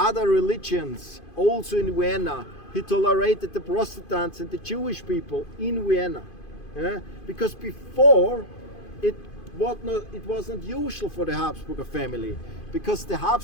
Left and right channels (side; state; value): right; late; 2.5 ms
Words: religions also in Vienna. He tolerated the Protestants and the Jewish people in Vienna. Because before it was not usual for the Habsburger family, because the